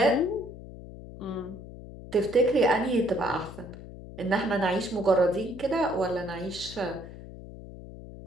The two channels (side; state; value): left; noise; hum, 14 dB below the sound